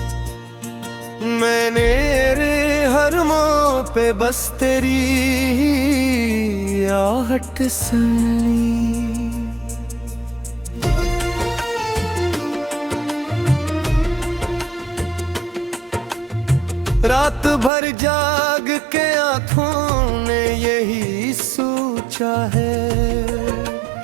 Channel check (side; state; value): left; drops out; at 17.7 s